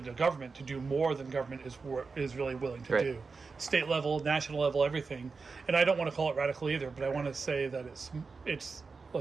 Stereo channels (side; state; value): left; quieter; 4.5 dB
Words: the government to do more than government is really willing to do. State level, national level, everything. And I don't want to call it radical either, but I want to say that it's